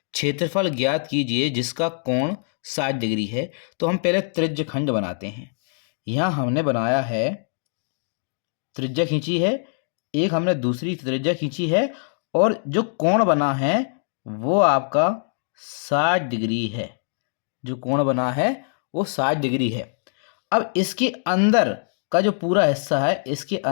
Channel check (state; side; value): silent; right; digital silence